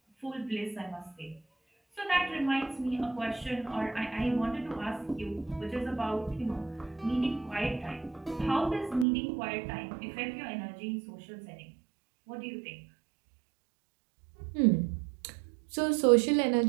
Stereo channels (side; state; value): left; drops out; at 9.1 s